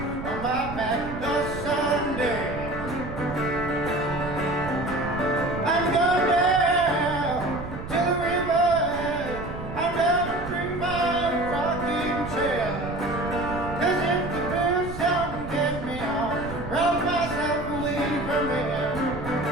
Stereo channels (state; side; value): noise; right; rumble, 10 dB below the sound